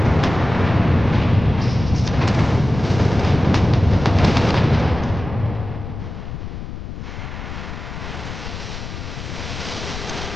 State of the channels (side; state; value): left; noise; rumble, 8 dB below the sound